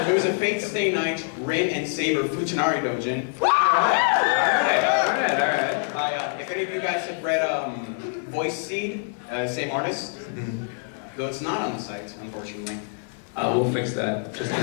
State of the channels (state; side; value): silent; right; 62 dB below the other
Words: was a fate stay night Rin and Saber Futanari doujin. Alright. If any of you guys have read Voice Seed, same artist. though it's not on the site, unfortunately. We'll fix that.